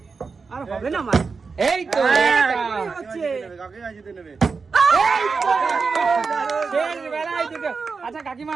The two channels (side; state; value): left; quieter; 4.8 dB